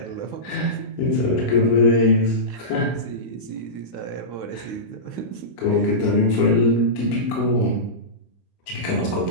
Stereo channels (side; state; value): right; late; 16 ms